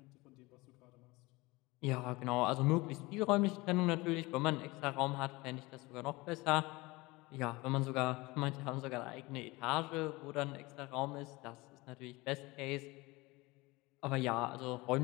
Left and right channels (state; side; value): quieter; right; 22.5 dB